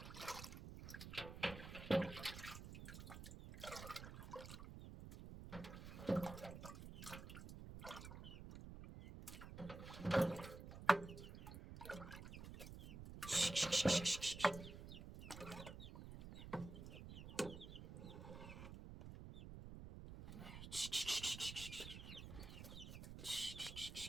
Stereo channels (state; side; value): noise; right; rumble, 10 dB below the sound